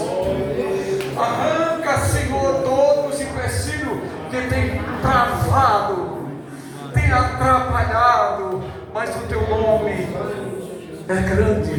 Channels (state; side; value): identical; both; correlation 1.00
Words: Arranca, Senhor, todos os empecilhos que tem travado, tem atrapalhado, mas o teu nome é